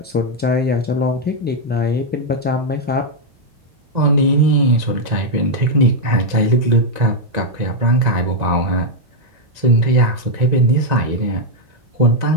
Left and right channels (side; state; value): left; late; 2.0 ms